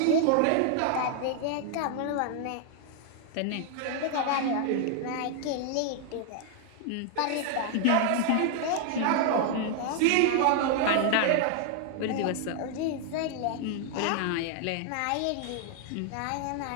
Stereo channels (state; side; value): different; both; correlation 0.00